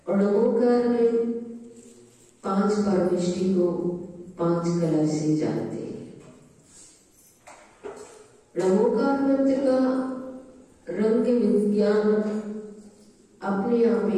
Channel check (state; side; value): identical; both; correlation 1.00